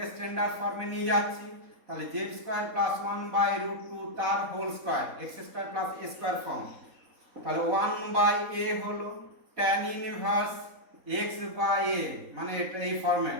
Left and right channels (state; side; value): late; left; 3.9 ms